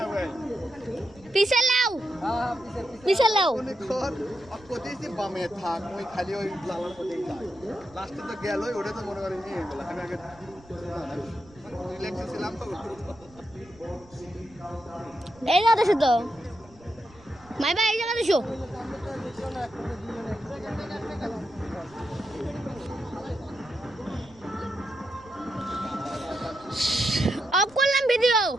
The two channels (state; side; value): noise; right; rumble, 24 dB below the sound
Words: ভাই পিছে লাও হ্যাঁ পিছে লাও মনে কর কোথায় বামে থাক ওই খালি ওই লালার মধ্যেই যায় লাস্টে তো গেল ওটা তো মনে করি নিয়ে গেল আমি আগে রিল্যাক্সে ছিলাম তো এই জায়গা দেখো তো মাই ভাই এই জায়গা দেখো অফ করলাম ভিডিও